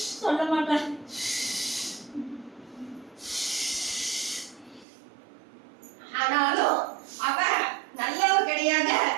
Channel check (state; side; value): drops out; left; at 4.9 s